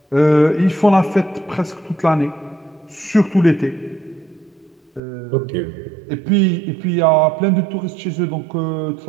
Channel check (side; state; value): left; drops out; at 5.0 s